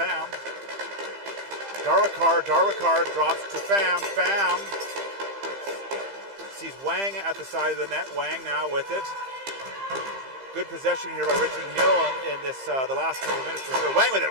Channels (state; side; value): late; left; 15 ms